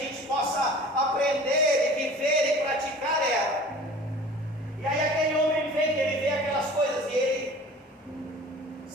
possa aprender e viver e praticar ela. E aí aquele homem vem, ele vê aquelas coisas e ele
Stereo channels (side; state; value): both; normal; correlation 0.43